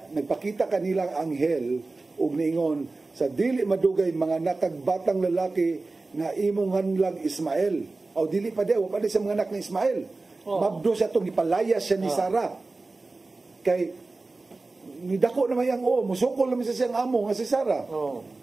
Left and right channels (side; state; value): left; quieter; 3.4 dB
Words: nagpakita kanilang anghel ug niingon, sa dili madugay mga nakagbatang lalaki nga imong hanlag Ismael. O dili pa de, pa de sa mga anak ni Ismael. Mabdo siya itong ipalayas siya ni Sarah. Kay nidako naman yang musukol naman sa siyang amo nga si Sarah.